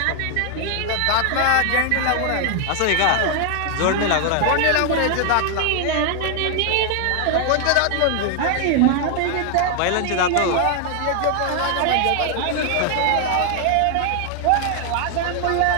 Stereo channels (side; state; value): both; different; correlation 0.00